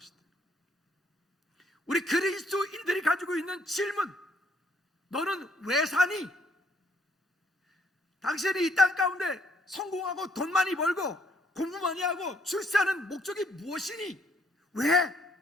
우리 그리스도인들이 가지고 있는 질문, 너는 왜 사니? 당신이 이 땅 가운데 성공하고 돈 많이 벌고 공부 많이 하고 출세하는 목적이 무엇이니? 왜?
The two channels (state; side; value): normal; both; correlation 0.67